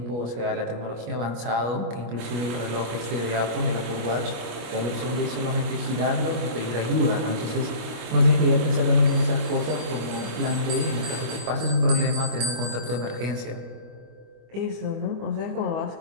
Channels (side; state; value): left; late; 25 ms